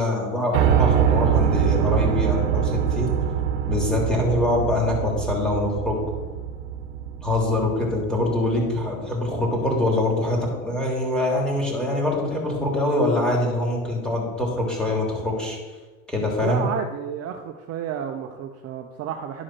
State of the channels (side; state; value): both; normal; correlation 0.29